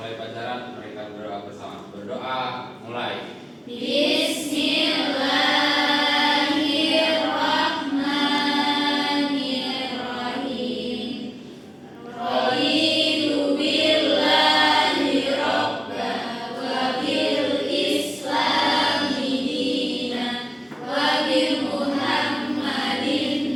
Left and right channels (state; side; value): identical; both; correlation 1.00